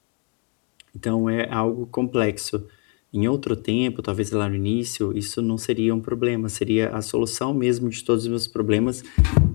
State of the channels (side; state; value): right; quieter; 36.1 dB